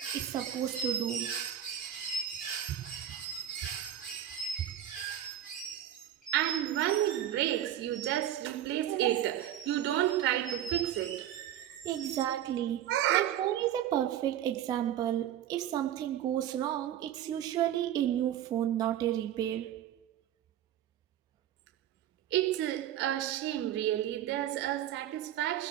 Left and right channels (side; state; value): left; quieter; 11.1 dB